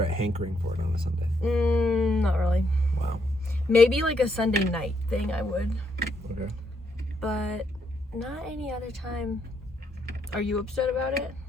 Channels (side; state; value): both; normal; correlation 0.75